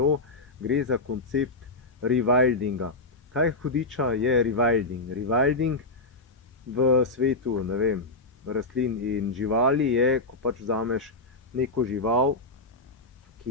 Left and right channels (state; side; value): quieter; right; 3.0 dB